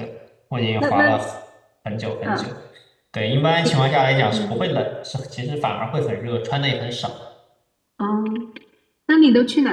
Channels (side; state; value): both; identical; correlation 1.00